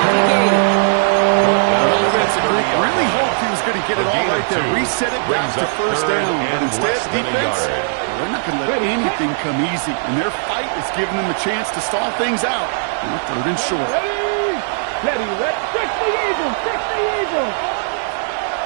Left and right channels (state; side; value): silent; left; digital silence